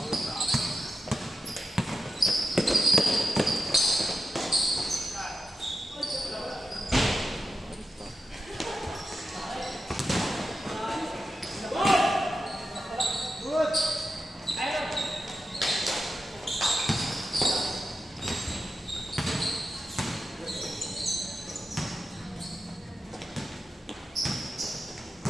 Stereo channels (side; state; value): both; normal; correlation 0.90